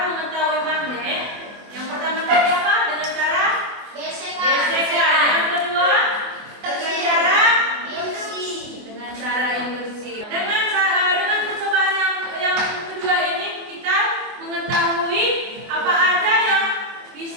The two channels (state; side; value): late; left; 24 ms